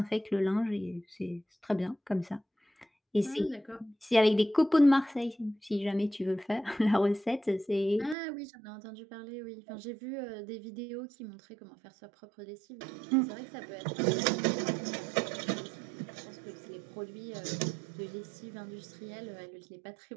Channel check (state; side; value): drops out; left; at 8.2 s